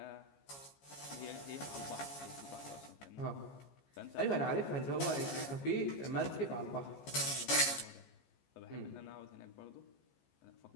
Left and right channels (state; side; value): late; right; 14 ms